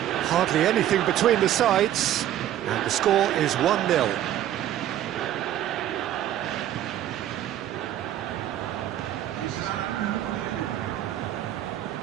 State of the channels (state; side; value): quieter; left; 12.1 dB